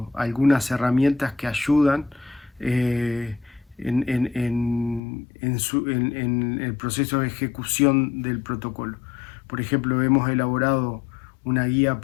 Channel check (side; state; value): right; drops out; at 5.0 s